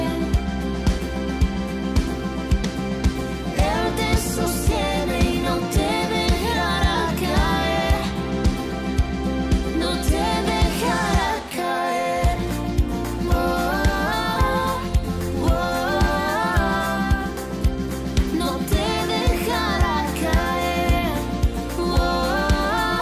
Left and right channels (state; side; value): identical; both; correlation 1.00